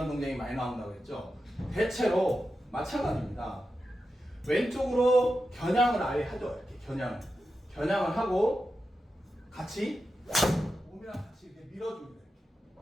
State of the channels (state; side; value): normal; both; correlation 0.90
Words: 동작이 많이 나온다고 했죠. 대체로 마찬가지입니다. 왼쪽으로 겨냥을 아예 하죠. 이렇게 겨냥을 하고 같이 몸이랑 같이 이렇게 밀어줍니다.